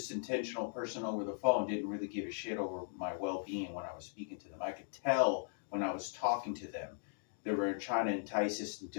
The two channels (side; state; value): right; silent; digital silence